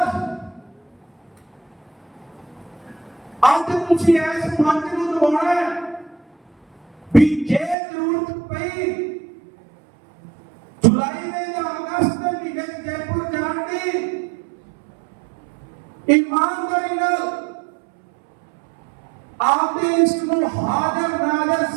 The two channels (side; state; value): left; drops out; at 7.8 s